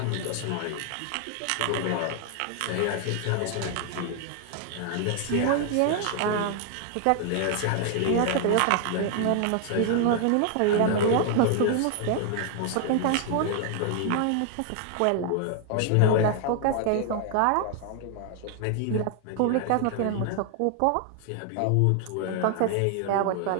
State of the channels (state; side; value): different; both; correlation 0.00